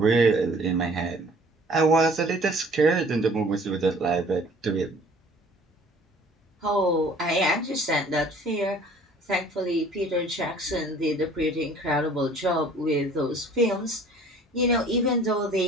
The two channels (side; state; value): both; normal; correlation 0.52